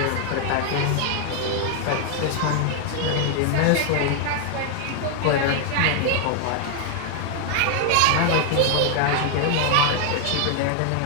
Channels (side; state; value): both; different; correlation 0.00